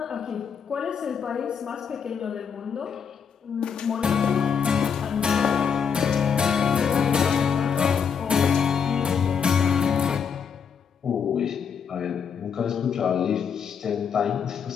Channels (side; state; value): right; quieter; 6.9 dB